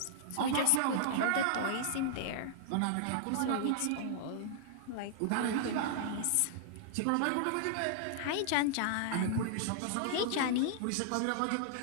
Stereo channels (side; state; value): both; different; correlation -0.01